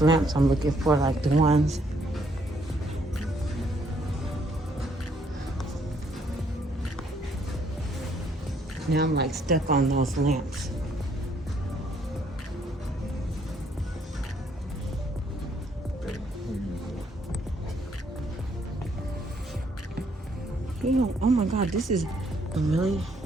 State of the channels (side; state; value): both; normal; correlation 0.69